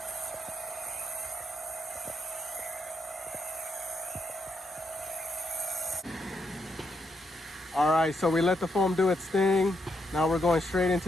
All right, so we let the foam do its thing. Now we're going straight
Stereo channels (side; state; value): both; normal; correlation 0.79